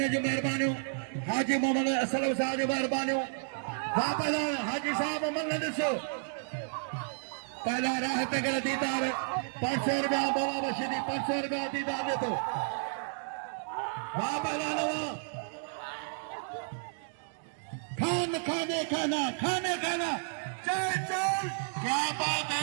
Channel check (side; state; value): left; silent; digital silence